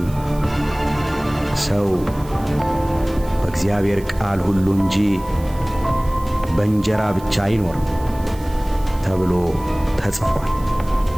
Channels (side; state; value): right; noise; hiss, 21 dB below the sound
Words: ሰው በእግዚአብሔር ቃል ሁሉ እንጂ በእንጀራ ብቻ አይኖርም ተብሎ ተጽፏል